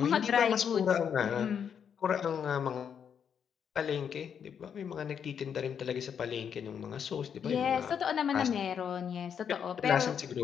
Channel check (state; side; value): quieter; right; 7.7 dB